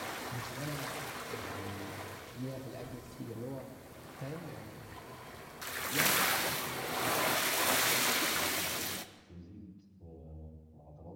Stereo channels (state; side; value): identical; both; correlation 1.00